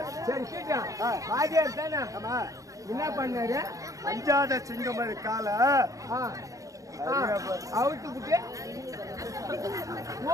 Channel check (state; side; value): late; left; 0.16 ms